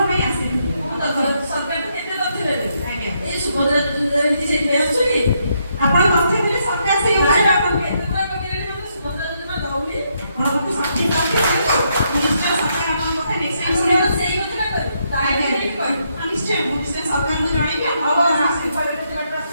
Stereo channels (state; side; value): inverted; both; correlation -0.76